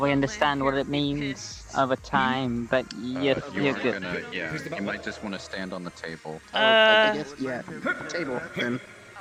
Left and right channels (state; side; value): identical; both; correlation 1.00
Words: understand what it means over time, but You you're are good. gonna, yeah, you might just want to stand on the table. I guess, yeah. Table, then.